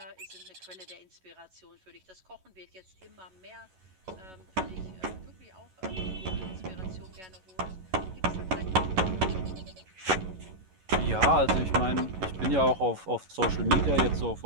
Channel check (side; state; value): left; late; 11 ms